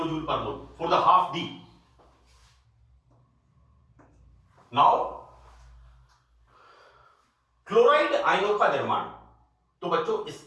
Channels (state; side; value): identical; both; correlation 1.00